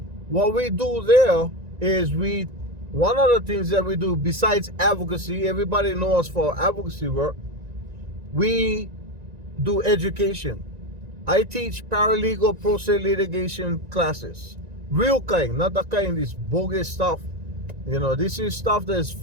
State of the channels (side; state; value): left; late; 1.9 ms